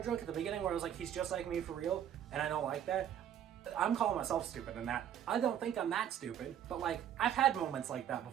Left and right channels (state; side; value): quieter; left; 10.0 dB